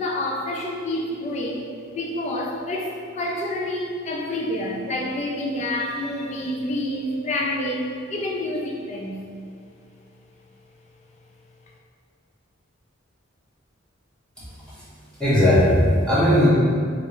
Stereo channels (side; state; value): both; normal; correlation 0.52